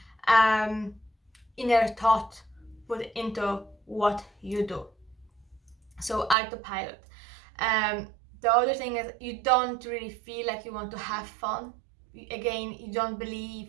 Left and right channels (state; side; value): drops out; left; at 6.4 s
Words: inner thought put into what you do. So autopilot. The other thing is you don't really feel like you want to have fun. Again, you don't